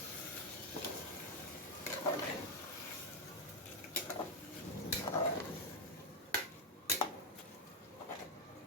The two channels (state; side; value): normal; both; correlation 0.04